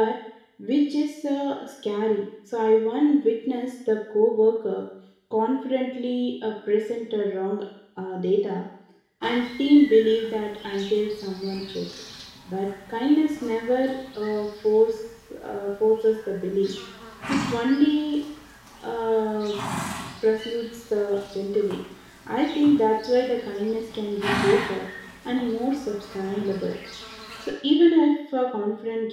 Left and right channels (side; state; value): both; identical; correlation 1.00